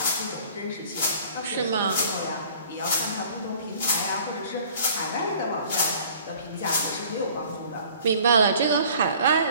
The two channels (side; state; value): both; inverted; correlation -0.51